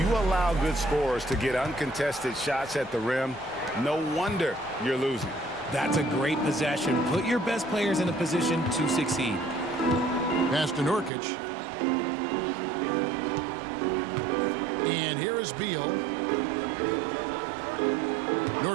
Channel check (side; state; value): left; drops out; at 11.1 s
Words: allow good scorers to get uncontested shots at the rim, no wonder you're losing. That's a great possession. Put your best players in a position to succeed. Pass to Nurkic. And here is Beal.